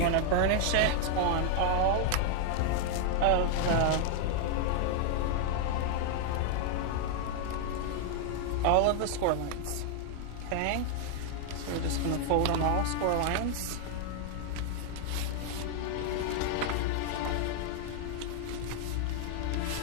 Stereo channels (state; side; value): different; both; correlation 0.00